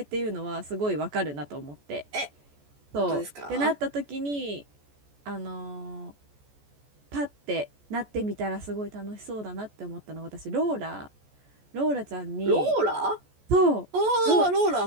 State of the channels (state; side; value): late; left; 14 ms